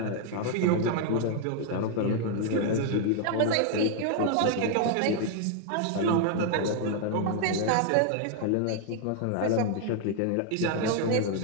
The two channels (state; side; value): different; both; correlation 0.00